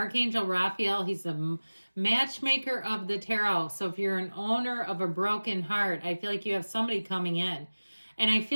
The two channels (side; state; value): both; inverted; correlation -1.00